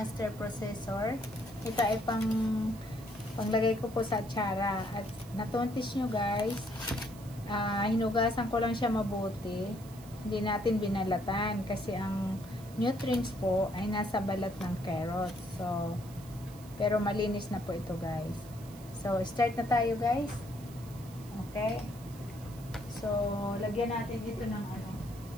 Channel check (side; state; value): right; noise; hiss, 20 dB below the sound